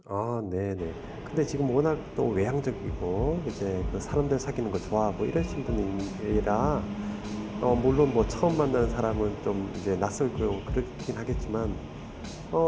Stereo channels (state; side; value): identical; both; correlation 1.00